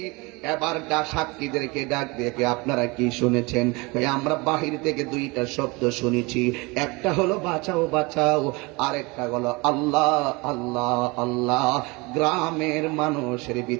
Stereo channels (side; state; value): left; quieter; 25.8 dB